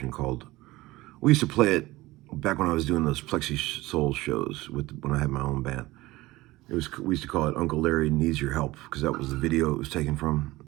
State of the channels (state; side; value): quieter; left; 19.2 dB